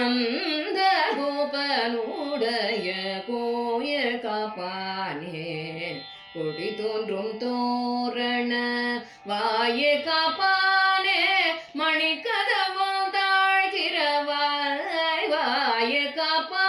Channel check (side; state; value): both; identical; correlation 1.00